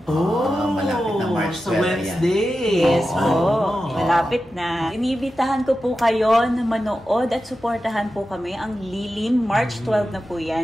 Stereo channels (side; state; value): both; normal; correlation 0.92